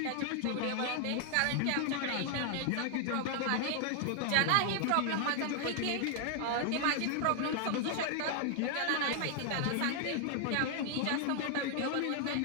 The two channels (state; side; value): different; both; correlation 0.00